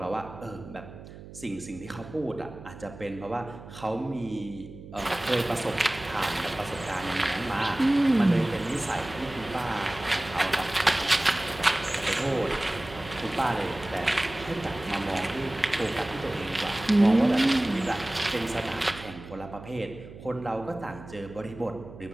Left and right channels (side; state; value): right; noise; hum, 15 dB below the sound